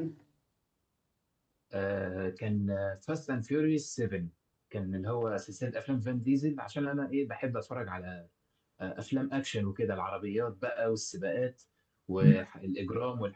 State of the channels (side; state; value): both; identical; correlation 1.00